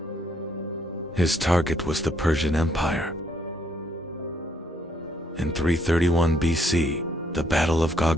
His target was the Persian Empire. In 331 BC, the Battle of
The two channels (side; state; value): both; normal; correlation 0.70